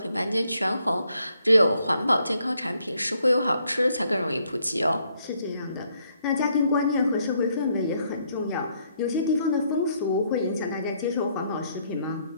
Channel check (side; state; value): both; inverted; correlation -0.71